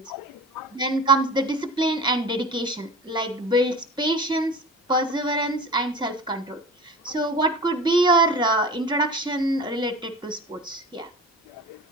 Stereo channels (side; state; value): both; normal; correlation 0.36